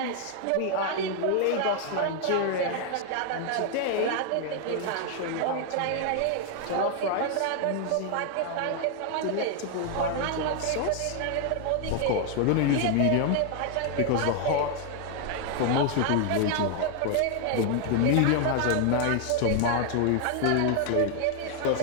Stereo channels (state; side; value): different; both; correlation 0.00